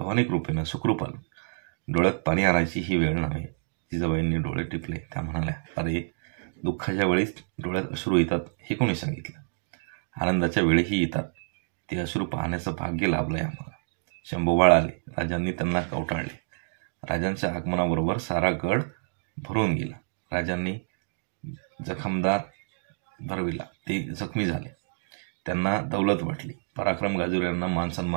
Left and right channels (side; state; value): left; silent; digital silence